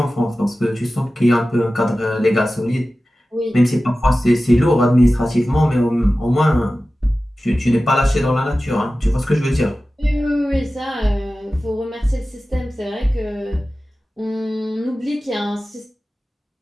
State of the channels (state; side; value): normal; both; correlation 0.95